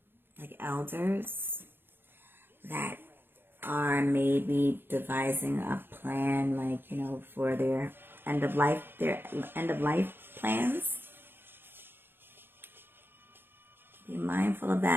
like elders that are maybe devising a plan, like, you know, for their end of life plans. Be mindful of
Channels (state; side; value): late; left; 0.10 ms